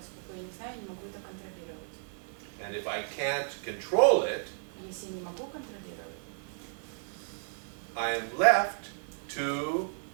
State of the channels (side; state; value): left; silent; 56 dB below the other